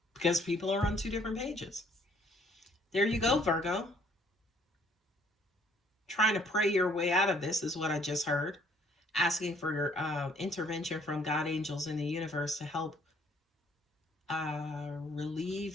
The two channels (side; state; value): both; normal; correlation 0.62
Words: Because people are on two different pages. There you go, Virgo. Trying to pray your way out of this is what I just heard. Asking for intervention from God, angels, in the universe to help